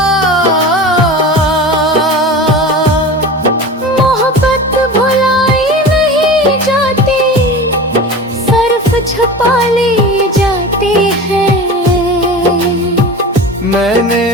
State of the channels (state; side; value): normal; both; correlation 0.32